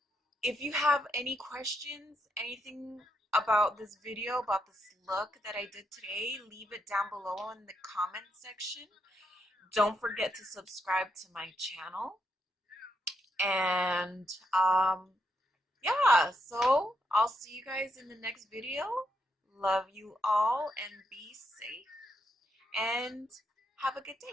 if you have any questions, anything about this video, about this look that I did today, leave it down below in the comment section. Don't forget to subscribe to my channel. And yeah, so I'll see you guys in the next video. Love you all, and be safe, and have a good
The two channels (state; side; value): normal; both; correlation 0.80